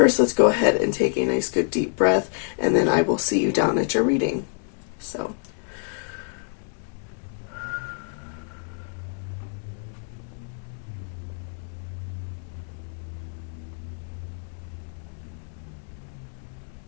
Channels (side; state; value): right; silent; 61 dB below the other